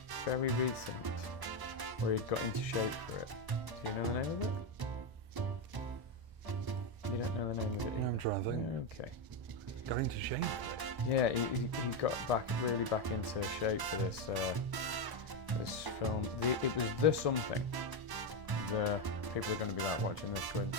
very recent where he'd got into shape for it. Do you know the name of it? You don't know the name of it either? I'm trying to think. Okay. Got into shape? Yeah, he got really back into shape for this this film. It was The Something. The people are going to be like watching this going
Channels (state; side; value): late; left; 1.0 ms